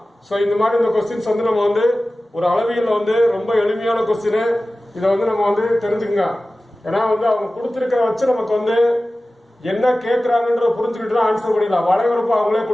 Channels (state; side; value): normal; both; correlation 0.96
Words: ஸோ இந்த மாதிரி இந்த கொஸ்டின்ஸ் வந்து நம்ம வந்து ஒரு அளவியல்ல வந்து ரொம்ப எளிமையான கொஸ்டின். இதை வந்து நம்ம வந்து தெரிஞ்சுக்கங்க. ஏன்னா வந்து அவங்க கொடுத்திருக்கிற வச்சு நமக்கு வந்து என்ன கேட்கறாங்கன்ற புரிஞ்சுக்கிட்டு ஆன்சர் பண்ணிடலாம். வளைவரப்பு அவங்களே